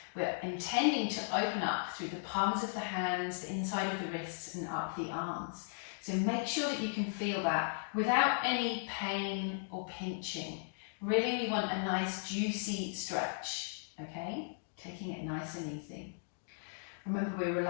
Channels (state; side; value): silent; right; digital silence